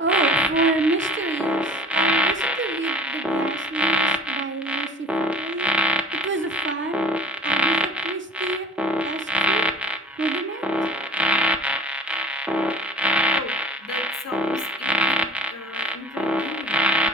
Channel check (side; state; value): both; normal; correlation 0.46